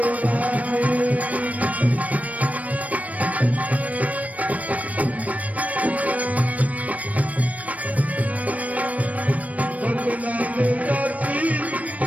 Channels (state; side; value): late; left; 0.069 ms